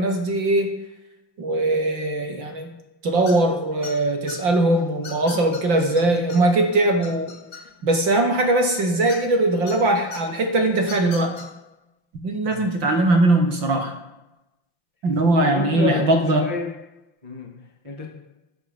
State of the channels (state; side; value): late; left; 5.8 ms